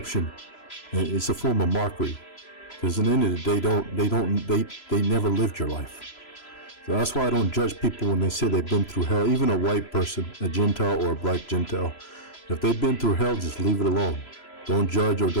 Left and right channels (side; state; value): right; late; 3.0 ms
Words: And it's a form of mockery, because at the end of the day, they never lived your life. So that's why I don't judge people when they say they've been through hell. Even a white person, a Gentile or a black Gentile, if they've been through hell, just leave it alone. Don't judge, or